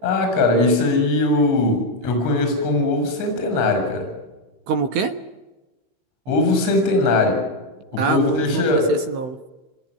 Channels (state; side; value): late; left; 16 ms